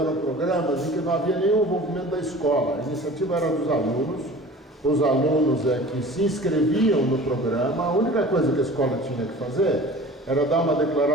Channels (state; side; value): normal; both; correlation 0.42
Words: programas em que não havia nenhum envolvimento da escola. A iniciativa era dos alunos, os alunos que se inscreviam no programa. A única coisa que a escola tinha que fazer era dar uma